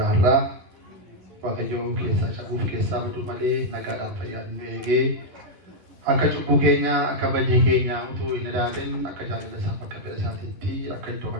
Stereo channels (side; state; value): left; late; 11 ms